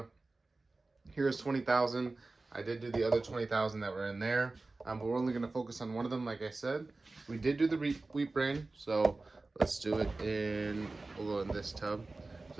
Here's 20,000. I did do the other 20,000 that were in there, but we're only going to focus on one of them. Like I said, we did do the wheat bran, so let's do it in, we'll go in this tub.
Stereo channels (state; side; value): quieter; left; 3.3 dB